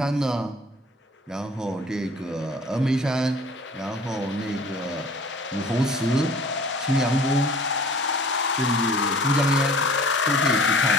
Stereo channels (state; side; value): normal; both; correlation 0.47